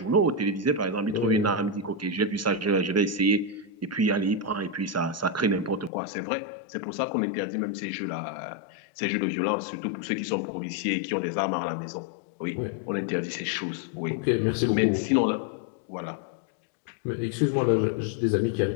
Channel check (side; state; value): right; drops out; at 5.9 s